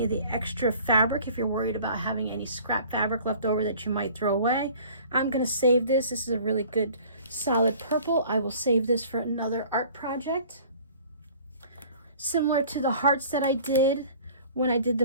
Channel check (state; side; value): inverted; both; correlation -0.49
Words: of the extra fabric if you're worried about having any scrap fabric left over that you might throw away. I'm going to save this. This is a really good solid purple. I will save this for another art project. Similar to the hearts that I did when I did